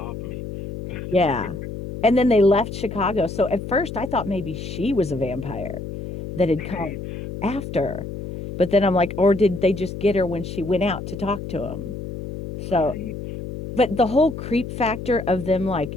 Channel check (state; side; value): noise; left; hum, 8 dB below the sound